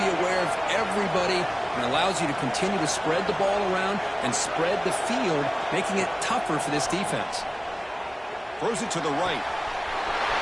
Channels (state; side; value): identical; both; correlation 1.00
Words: aware of everybody, and allows you to continue to spread the ball around and spread the field, making it tougher for this defense. Throws it to the right.